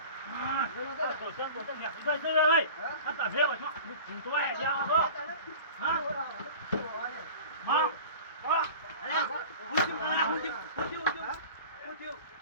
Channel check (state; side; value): inverted; both; correlation -0.40